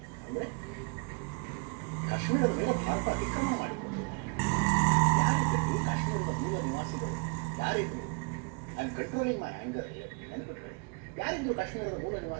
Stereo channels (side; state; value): left; quieter; 34.1 dB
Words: ಅಂದರೆ ಕಾಶ್ಮೀರದ ಮೇಲೆ ಭಾರತ ಅತಿಕ್ರಮಣ ಮಾಡಿಕೊಂಡಿದ್ದಾರೆ. ಯಾರಿದ್ರು ಕಾಶ್ಮೀರದ ಮೂಲ ನಿವಾಸಿಗಳು? ಯಾರಿದ್ರು? I am controlling my anger, ನೆನಪಿಟ್ಕೊಳ್ಳಿ. ಯಾರಿದ್ರು ಕಾಶ್ಮೀರದ ಮೂಲ